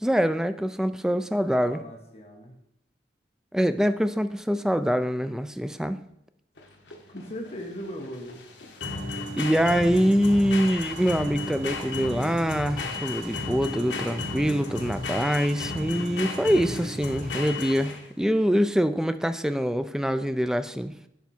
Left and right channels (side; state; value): both; normal; correlation 0.92